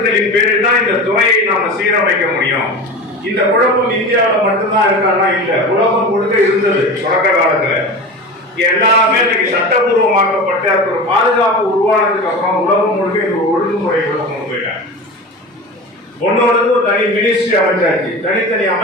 பேரில் தான் இந்த துறையை நாம சீரமைக்க முடியும். இந்த குழப்பம் இந்தியாவில் மட்டும்தான் இருக்கான்னா இல்ல, உலகம் முழுக்க இருந்தது. தொடக்க காலத்துல எல்லாமே இன்னைக்கு சட்டபூர்வமாக்கப்பட்ட ஒரு பாதுகாப்பு உருவானதுக்கு அப்புறம் உலகம் முழுக்க இந்த ஒழுங்குமுறைகளை கொண்டு போயிட்டாங்க. ஒன்னோடு ஒரு தனி மினிஸ்ட்ரி அமைச்சாச்சு, தனித்தனி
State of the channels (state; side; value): normal; both; correlation 0.30